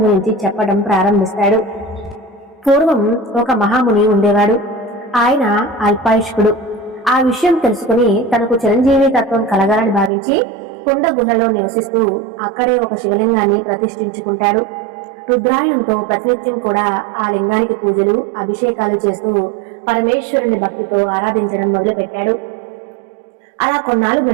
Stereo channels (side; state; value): left; drops out; at 10.1 s